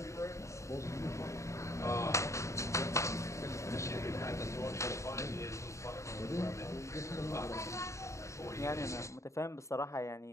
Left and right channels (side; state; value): right; late; 0.14 ms